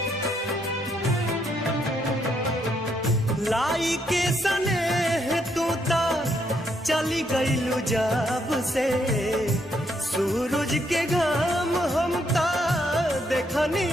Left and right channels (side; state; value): both; normal; correlation 0.74